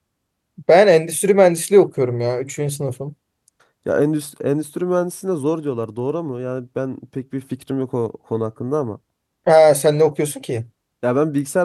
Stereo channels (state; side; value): identical; both; correlation 1.00